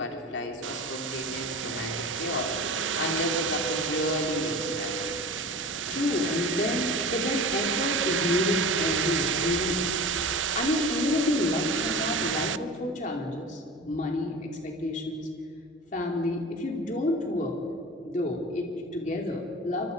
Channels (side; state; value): both; normal; correlation 0.35